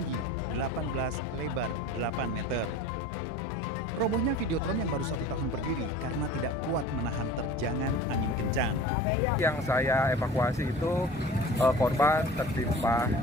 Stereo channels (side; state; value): both; normal; correlation 0.40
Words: 18 lebar 8 meter. Robohnya Videotron yang baru 1 tahun berdiri karena tidak kuat menahan terjangan angin kencang. Yang saya evakuasi itu korban tertimpa